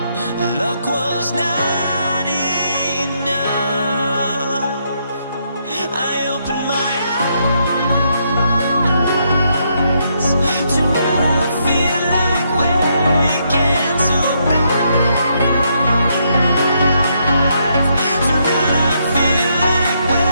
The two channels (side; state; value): both; inverted; correlation -0.76